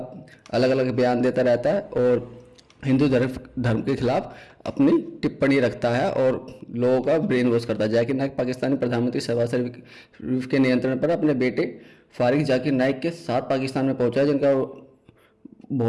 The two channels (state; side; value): identical; both; correlation 1.00